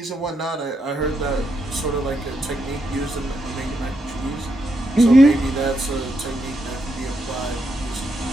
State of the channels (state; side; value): normal; both; correlation 0.81